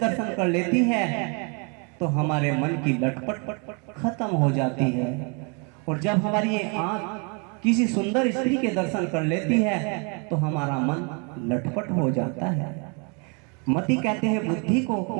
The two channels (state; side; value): quieter; left; 34.4 dB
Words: कर लेती है, तो हमारे मन की लटपट खत्म हो जाती है। और जब हमारी ये आंख किसी सुंदर स्त्री के दर्शन कर लेती है, तो हमारा मन लटपट हो जाता है। मति कहते हैं बुद्धि को,